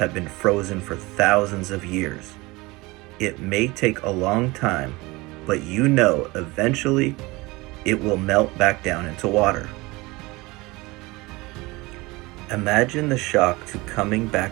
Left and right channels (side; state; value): left; quieter; 22.7 dB